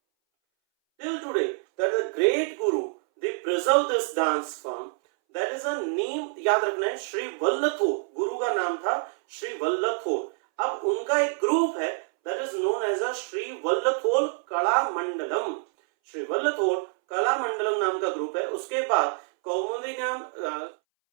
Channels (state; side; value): silent; left; 60 dB below the other